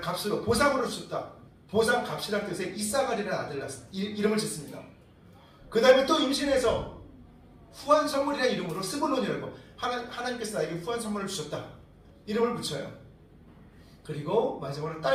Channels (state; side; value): identical; both; correlation 1.00